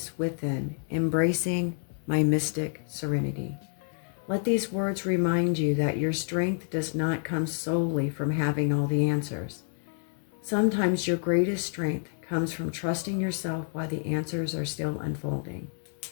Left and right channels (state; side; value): silent; right; 59 dB below the other